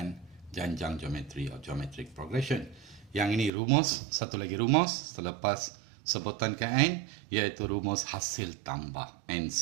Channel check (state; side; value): drops out; left; at 3.5 s